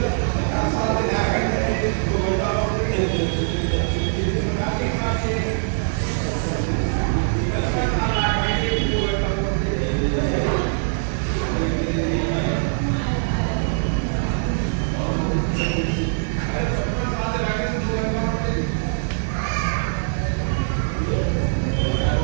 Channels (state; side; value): silent; left; digital silence